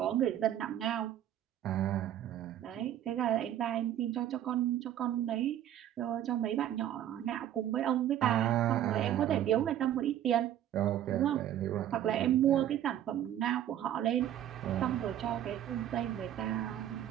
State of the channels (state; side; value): quieter; left; 11.3 dB